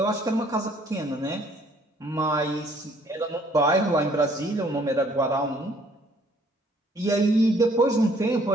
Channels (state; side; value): normal; both; correlation 0.61